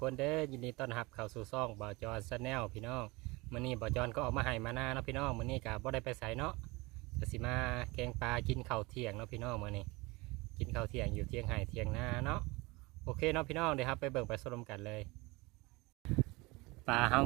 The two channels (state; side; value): quieter; left; 24.0 dB